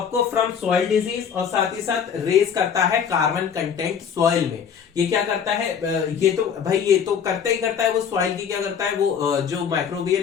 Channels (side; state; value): right; quieter; 7.4 dB